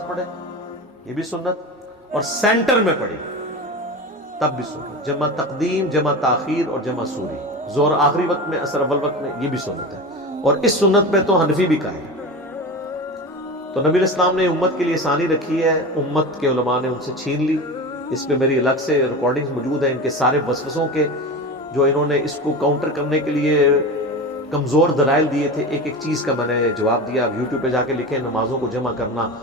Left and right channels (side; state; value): both; normal; correlation 0.27